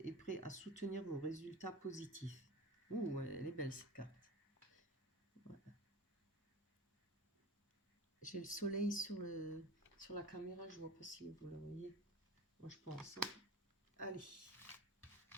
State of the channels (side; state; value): both; normal; correlation 0.33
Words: est prêt à soutenir vos résultats positifs. Ouh, elle est belle cette carte. Voilà. J'ai le soleil sur la caméra, je ne vois pas si vous le voyez. Moi je pense, hein. Allez.